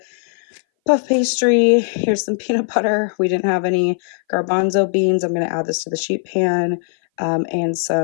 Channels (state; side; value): silent; right; 61 dB below the other